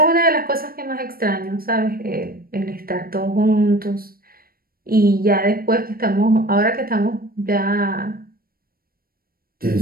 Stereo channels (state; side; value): late; left; 0.43 ms